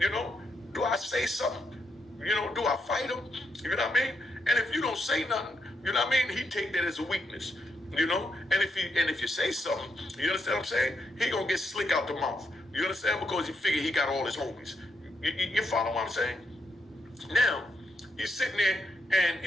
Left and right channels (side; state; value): both; normal; correlation 0.79